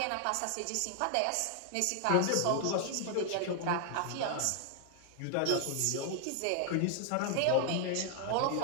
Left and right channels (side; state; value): both; different; correlation 0.00